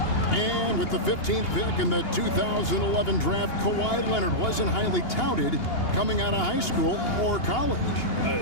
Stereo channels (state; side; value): late; right; 2.8 ms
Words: And with the 15th pick in the 2011 draft, Kawhi Leonard wasn't highly touted coming out of high school or college.